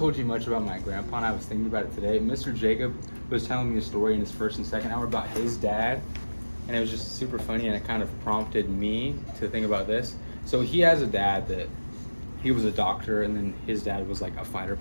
you much about my grandpa, and I was thinking about it today. Mr. Jacob was telling me a story in his first and second hour about his dad, and it was just super funny, and it kind of prompted me to think about this. So he has a dad that he was a doctor, and then his dad was like a fighter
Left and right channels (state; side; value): inverted; both; correlation -1.00